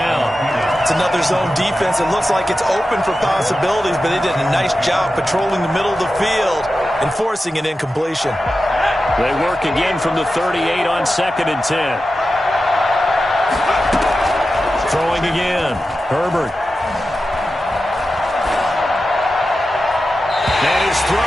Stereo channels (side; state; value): both; normal; correlation 0.92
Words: It's another zone defense. It looks like it's open for possibilities, but they did a nice job patrolling the middle of the field and forcing an incompletion. They work again from the 38 on 2nd and 10. Throwing again. Herbert. And his